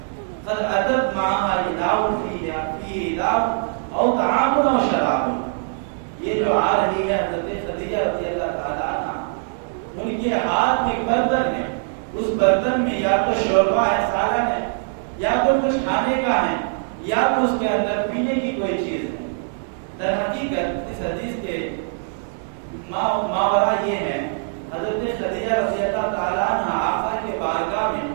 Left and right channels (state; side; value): silent; left; 64 dB below the other